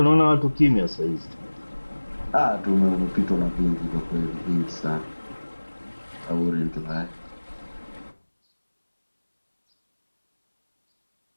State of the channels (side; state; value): both; inverted; correlation -1.00